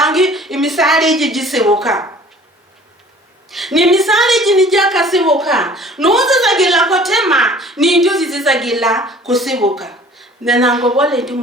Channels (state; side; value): normal; both; correlation 0.49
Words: imisari jigisebuka ni misali jinijaka sibuka nuze zagila kotema ni njuzi zizagila kusibuka nanango bole